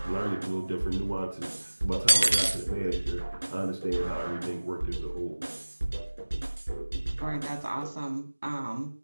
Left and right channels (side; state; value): both; inverted; correlation -1.00